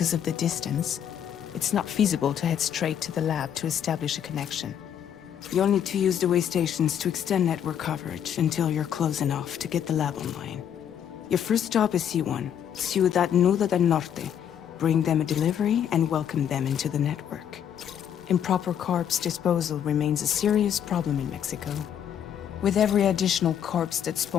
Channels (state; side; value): quieter; right; 9.1 dB